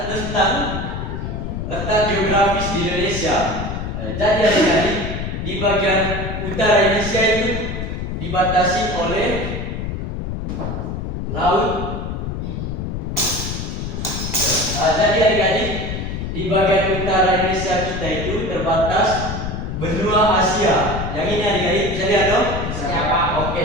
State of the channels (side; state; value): left; noise; rumble, 4 dB below the sound